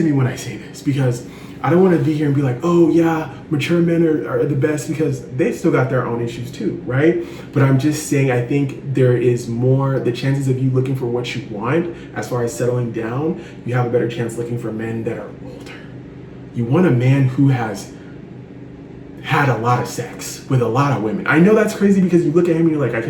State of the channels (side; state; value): both; identical; correlation 1.00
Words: me when I say this, because I don't want to be here and be like, oh yeah, mature men are the best, because they still got their own issues too, right? But I'm just saying, I think there is more, the chances of you looking for what you want as far as settling down, you have a better chance looking for men that are older. You want a man who has had a lot of sex with a lot of women. I know that's crazy because you look at him and you're like, I